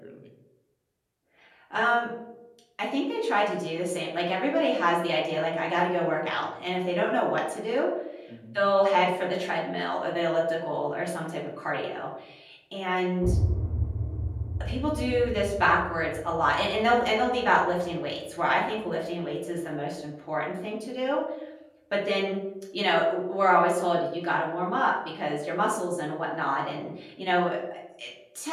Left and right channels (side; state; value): both; identical; correlation 1.00